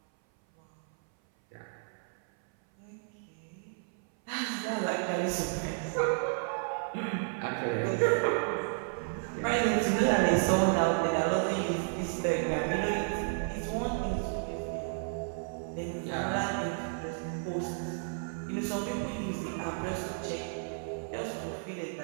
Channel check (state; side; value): silent; left; 56 dB below the other